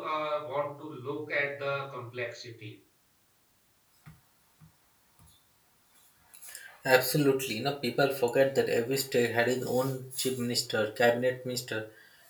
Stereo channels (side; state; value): both; identical; correlation 1.00